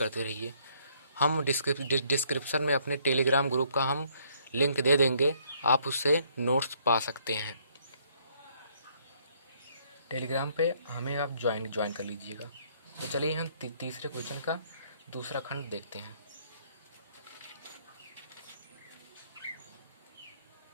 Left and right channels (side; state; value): both; inverted; correlation -0.66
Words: रहिए। हम डिस्क्रिप्शन में अपने टेलीग्राम ग्रुप का हम लिंक दे देंगे, आप उससे नोट्स पा सकते हैं। टेलीग्राम पे हमें आप ज्वाइन कर लीजिएगा। तो चलिए हम तीसरे क्वेश्चन का दूसरा खंड देखते हैं।